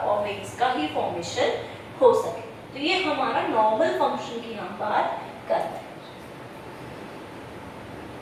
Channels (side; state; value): both; identical; correlation 1.00